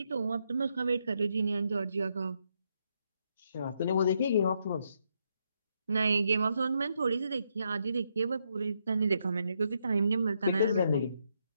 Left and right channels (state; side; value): inverted; both; correlation -0.78